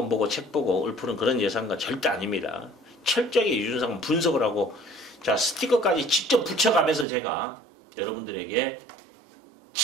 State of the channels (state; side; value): drops out; left; at 7.1 s